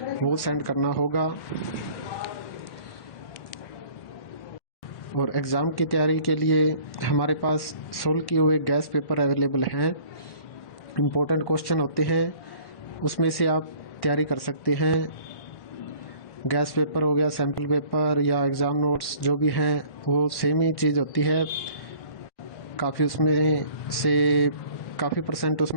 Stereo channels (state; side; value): late; right; 1.5 ms